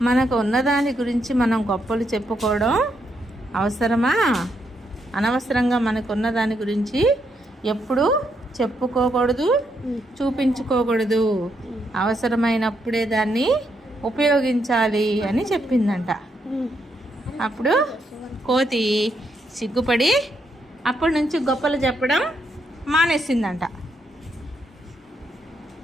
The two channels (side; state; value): both; normal; correlation 0.78